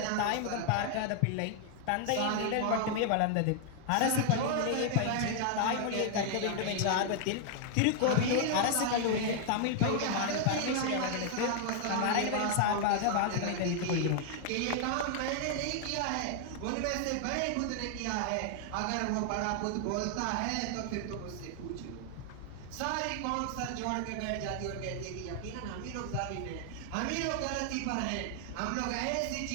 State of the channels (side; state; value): both; different; correlation 0.00